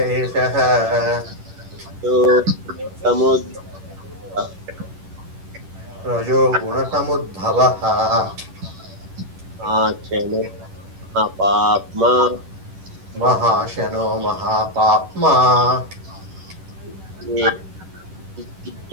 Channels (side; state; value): left; late; 11 ms